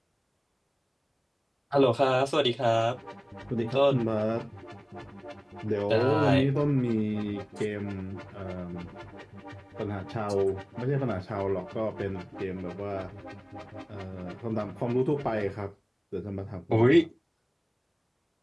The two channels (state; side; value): identical; both; correlation 1.00